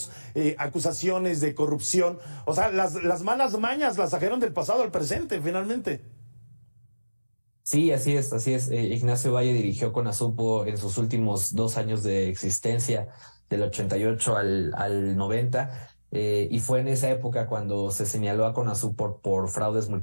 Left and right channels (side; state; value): both; inverted; correlation -1.00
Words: acusaciones de corrupción. O sea, las malas mañas las trajeron del pasado al presente, finalmente. Sí, así es, así es. Ignacio Valle dirigió CONASUPO en sus últimos 2 años de existencia, del 88 al 90, y fue en esa época cuando se señaló a CONASUPO por fraudes